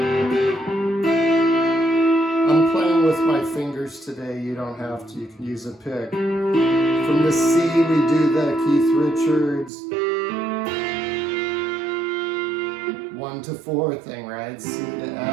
I'm playing with my fingers today, you don't have to, you can use a pick. From the C, we do the Keith Richards 1 to 4 thing, right? C to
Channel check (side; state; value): left; drops out; at 9.7 s